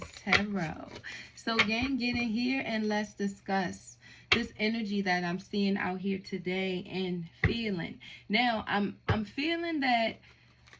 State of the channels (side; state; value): both; identical; correlation 1.00